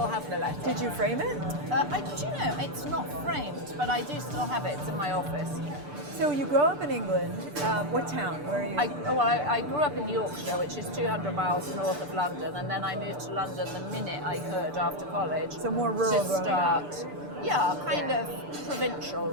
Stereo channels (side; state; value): left; late; 6.8 ms